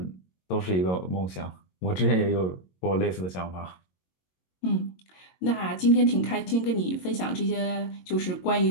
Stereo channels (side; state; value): right; late; 22 ms